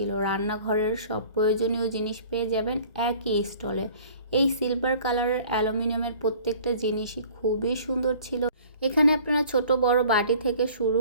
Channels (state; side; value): inverted; both; correlation -0.49